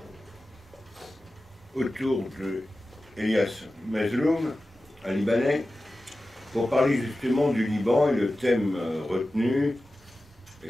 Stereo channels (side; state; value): both; normal; correlation 0.94